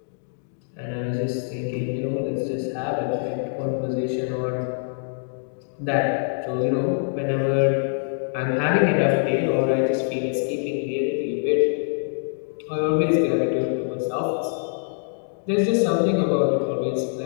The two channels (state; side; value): silent; right; digital silence